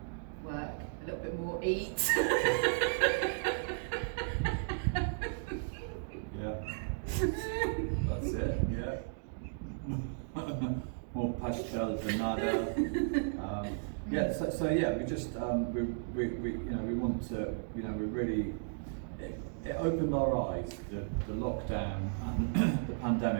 work, a little bit more eat. Yeah, that's it. Yeah. More pastel than nada. Yeah. So yeah, we just we want to we really it opened our eyes, the lockdown and the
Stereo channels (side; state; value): left; silent; digital silence